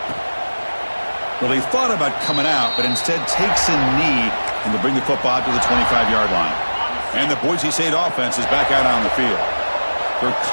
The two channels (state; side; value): inverted; both; correlation -1.00